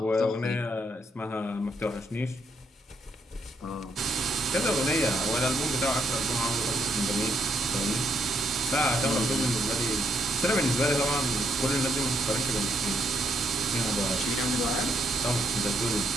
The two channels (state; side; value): normal; both; correlation 0.75